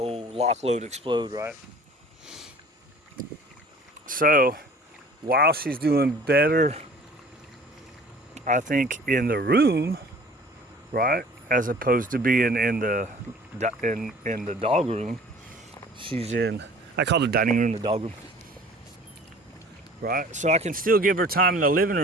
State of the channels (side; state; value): both; normal; correlation 0.48